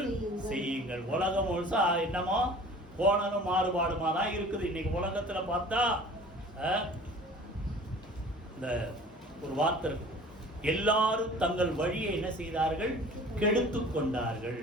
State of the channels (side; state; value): both; normal; correlation 0.45